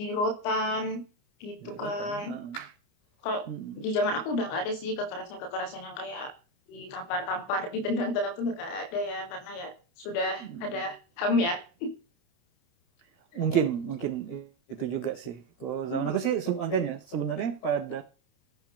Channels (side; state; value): right; late; 29 ms